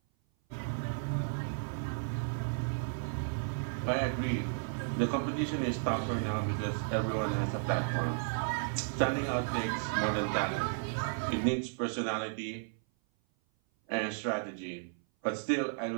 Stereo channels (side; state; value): left; silent; 55 dB below the other